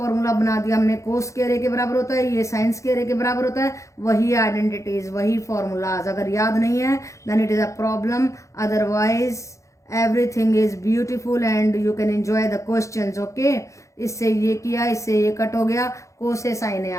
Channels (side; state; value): right; late; 0.15 ms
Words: बना दिया हमने, कोस स्क्वायर ए के बराबर होता है, ये साइन स्क्वायर ए के बराबर होता है, वही आइडेंटिटीज वही फॉर्मूलाज। अगर याद नहीं है then it is a problem, otherwise everything is beautiful and you can enjoy the questions. Okay, इससे ये किया, इससे ये कट हो गया, कोस से साइन ए